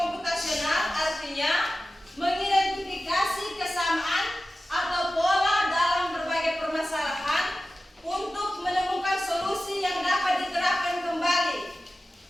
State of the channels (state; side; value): normal; both; correlation 0.95